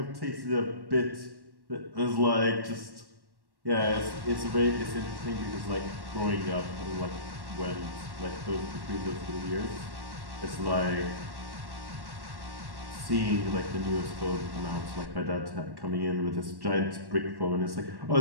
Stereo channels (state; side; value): late; left; 1.1 ms